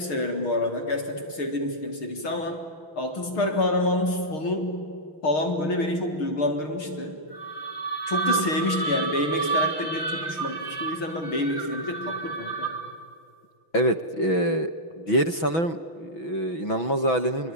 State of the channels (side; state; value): right; late; 6.5 ms